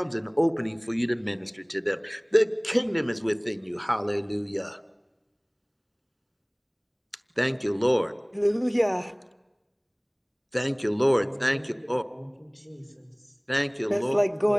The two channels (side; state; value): both; identical; correlation 1.00